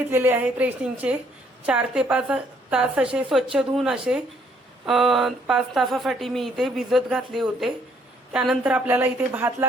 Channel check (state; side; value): normal; both; correlation 0.66